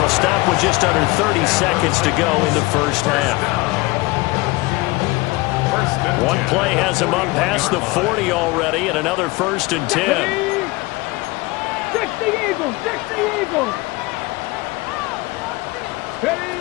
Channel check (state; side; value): quieter; right; 22.5 dB